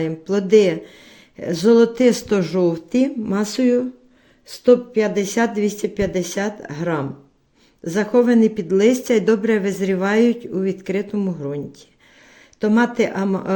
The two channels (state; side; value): identical; both; correlation 1.00